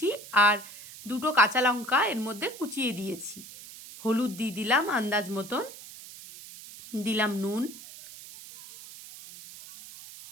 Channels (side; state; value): right; noise; hiss, 16 dB below the sound